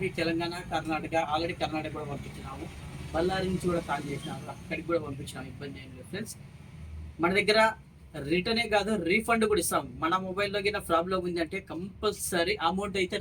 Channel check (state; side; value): identical; both; correlation 1.00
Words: తెలంగాణ, కర్ణాటక. ఆల్రెడీ కర్ణాటక కూడా పంపించినాము, బళ్ళారి నుంచి కూడా కాల్ చేసినాము, అక్కడికి కూడా పంపించినాము. ఇబ్బంది ఏం లేదు ఫ్రెండ్స్. మన దగ్గర రిటర్నే కాదు, రీఫండ్ కూడా ఇస్తాం. మన మొబైల్లో కింద ప్రాబ్లం ఉంది అంటే కంపల్సరీ అమౌంట్ అయితే